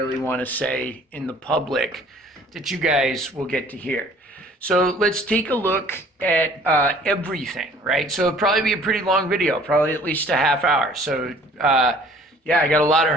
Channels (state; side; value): normal; both; correlation 0.53